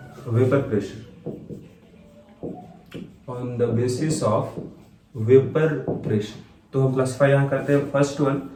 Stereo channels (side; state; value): both; identical; correlation 1.00